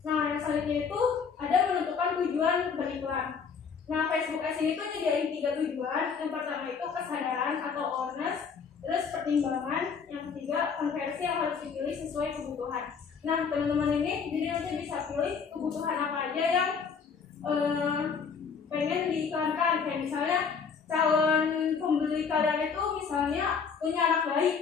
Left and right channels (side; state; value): right; quieter; 6.0 dB